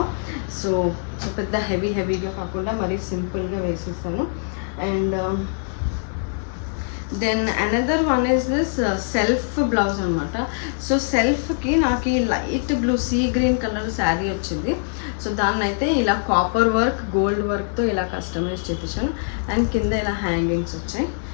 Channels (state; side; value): silent; right; 63 dB below the other